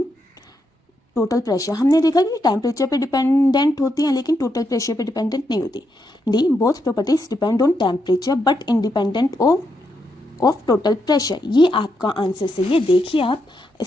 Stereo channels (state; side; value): normal; both; correlation 0.81